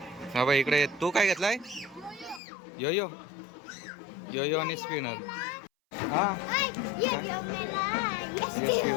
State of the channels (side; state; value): right; drops out; at 2.4 s